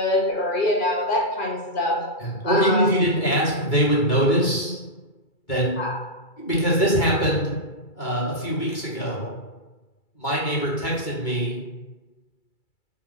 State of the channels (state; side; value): late; right; 2.2 ms